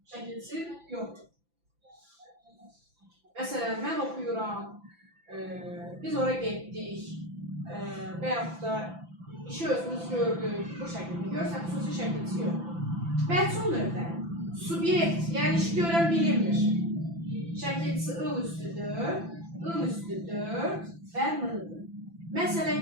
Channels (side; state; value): left; late; 5.9 ms